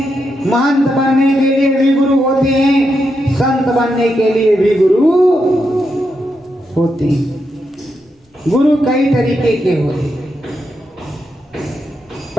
महंत बनने के लिए भी गुरु होते हैं, संत बनने के लिए भी गुरु होते हैं। गुरु कई तरीके के होते हैं।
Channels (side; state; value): both; normal; correlation 0.84